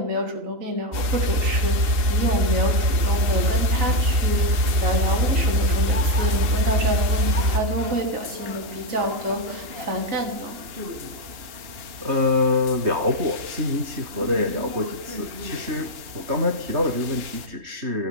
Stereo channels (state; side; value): late; left; 2.8 ms